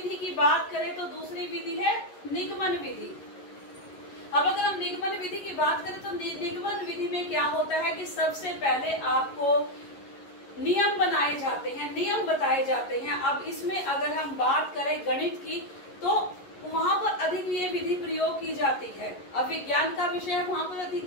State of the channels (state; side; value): late; right; 11 ms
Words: की बात करें तो दूसरी विधि है निगमन विधि। अब अगर हम निगमन विधि की बात करें तो निगमन विधि में क्या होता है कि सबसे पहले आपको नियम बनाए जाते हैं, नियम बताए जाते हैं। अब इसमें अगर हम बात करें गणित की तो वहां पर अधिक ये विधि प्रयोग की जाती है। अब विज्ञान का विषय है, वहां पर